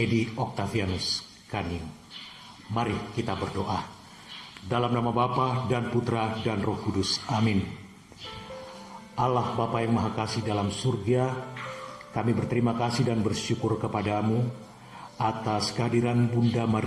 Octavianus Kaniu. Mari kita berdoa. Dalam nama Bapa dan Putra dan Roh Kudus. Amin. Allah Bapa yang Maha Kasih dalam surga, kami berterima kasih dan bersyukur kepadamu atas kehadiran Bunda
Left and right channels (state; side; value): identical; both; correlation 1.00